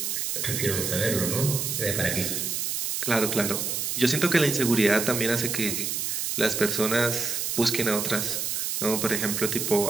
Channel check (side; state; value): right; noise; hiss, 1 dB below the sound